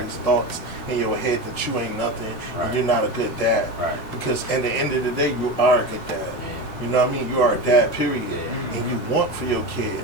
Exactly. thoughts in your head that you ain't nothing Right. and you're not a good dad. Right. Because at the end of the day, you are a good dad. Yeah. You know what I mean? You are a dad, period. Yeah. And you want for your kid.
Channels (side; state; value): right; late; 8.7 ms